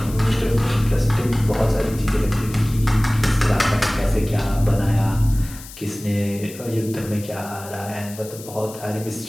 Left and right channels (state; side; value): noise; left; hiss, 16 dB below the sound